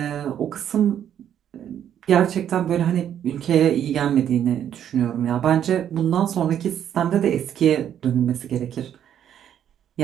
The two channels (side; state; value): left; quieter; 9.8 dB